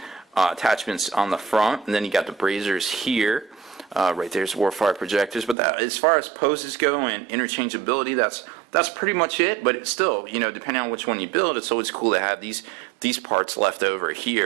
attachments on the front, and then you got the braziers here. Right there's Warfire projectors. But as far as poses go and interchangeability, that's pretty much it. But it's still, depending on which one you build, it's always cool to have these parts left over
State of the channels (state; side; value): drops out; left; at 5.6 s